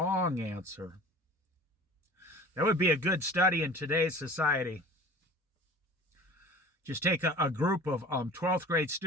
answer. That would be a good study in today's society. Just take a group of 12th grade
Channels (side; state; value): both; normal; correlation 0.43